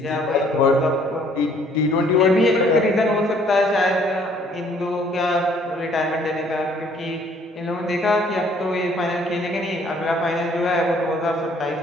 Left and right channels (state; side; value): normal; both; correlation 0.61